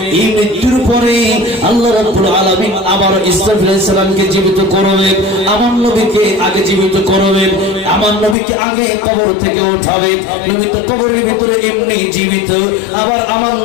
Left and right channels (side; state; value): right; drops out; at 8.3 s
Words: এই মৃত্যুর পরে আল্লাহ রাব্বুল আলামিন আবার ইসরাফিল আলাইহিস সালামকে জীবিত করবে, আমার নবীকে আগে জীবিত করবে, আমার নবীকে আগে কবর থেকে উঠাবে। নবী তো কবরের ভিতরে এমনি জীবিত, আবার আমার